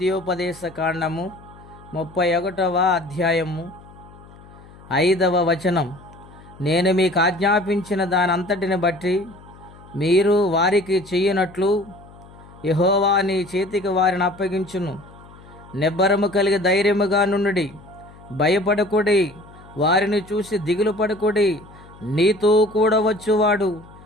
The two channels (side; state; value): left; noise; hum, 22 dB below the sound